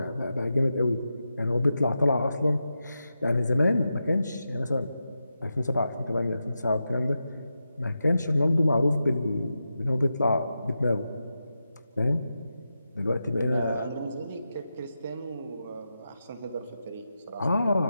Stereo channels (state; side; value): inverted; both; correlation -0.89